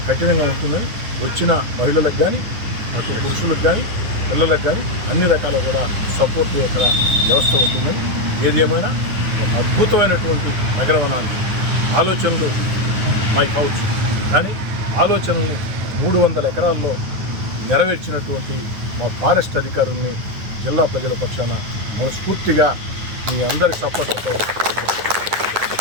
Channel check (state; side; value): late; left; 9.6 ms